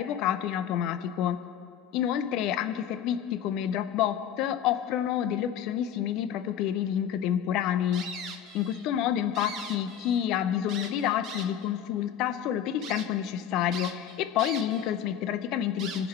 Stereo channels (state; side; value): quieter; right; 9.6 dB